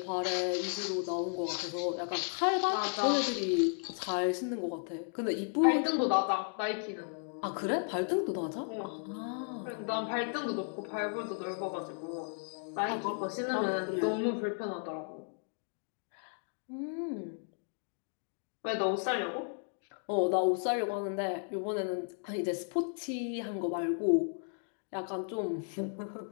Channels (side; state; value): right; silent; 55 dB below the other